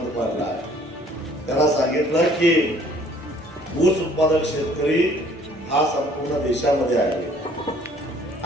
पाडला आहे? त्यांना सांगितलं की ऊस उत्पादक शेतकरी हा संपूर्ण देशामध्ये आहे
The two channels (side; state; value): both; normal; correlation 0.57